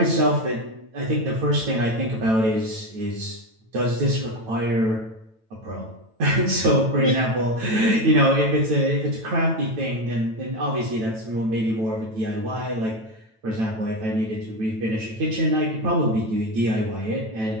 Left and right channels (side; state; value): left; late; 9.0 ms